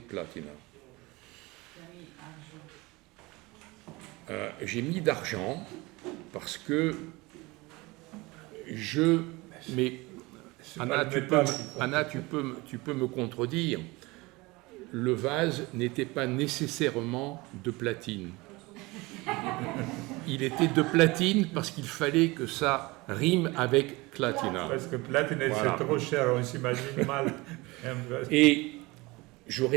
platina. J'ai mis d'argent parce que mais Anna, tu peux me contredire. Le vase n'était pas nécessairement de platine. Il était de platine parce qu'il fallait que ça rime avec clatina. Parce que platine, voilà. C'est trop cher, on s'imagine mal. Et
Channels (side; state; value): left; quieter; 23.1 dB